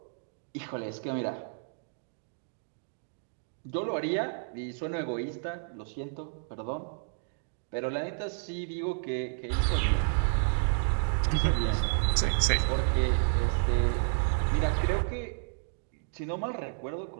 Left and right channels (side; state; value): left; silent; digital silence